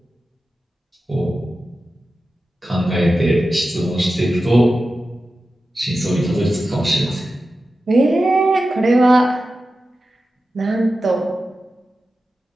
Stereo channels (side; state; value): both; normal; correlation 0.93